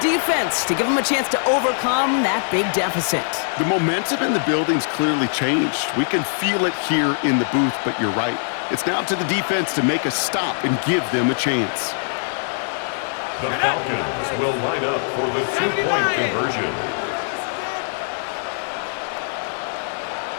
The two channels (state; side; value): silent; right; 55 dB below the other